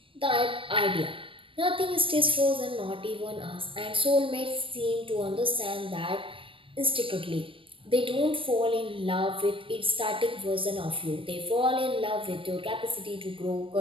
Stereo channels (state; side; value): late; left; 0.25 ms